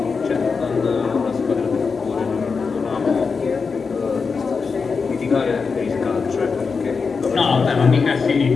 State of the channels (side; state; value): right; quieter; 5.1 dB